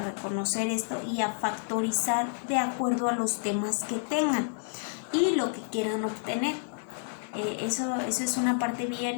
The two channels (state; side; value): silent; right; digital silence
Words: esto y a factorizar de acuerdo a los temas que tengan y lo que quieran obtener. Eso es una parte bien